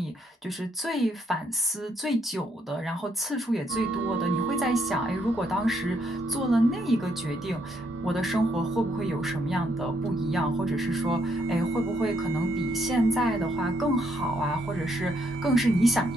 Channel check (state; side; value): normal; both; correlation 0.74